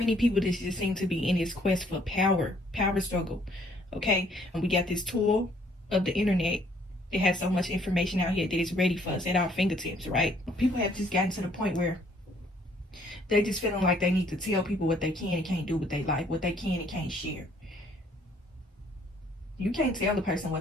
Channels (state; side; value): normal; both; correlation 0.63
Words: people just seem to be in this quest for power struggle. Okay? And we got this tool of the internet that has so much information out here that is ready for us at our fingertips, right? People have just gotten to the point where they just feeling like they need to tell people what they can and can't do with their life, what they can and can't share. You can't tell a person